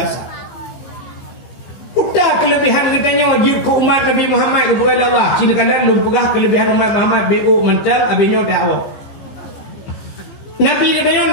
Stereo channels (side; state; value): right; late; 15 ms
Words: Udah kelebihan getanyo jib ke umat Nabi Muhammad kepada Allah. Cina kalian lu pegah kelebihan umat Muhammad BO mental abinyo dakwah. Nabi getanyo